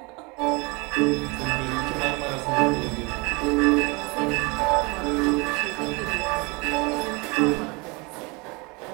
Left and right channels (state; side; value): quieter; left; 27.9 dB